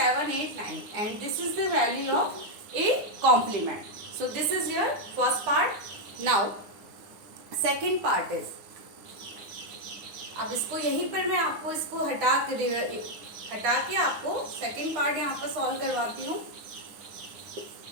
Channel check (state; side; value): late; left; 9.7 ms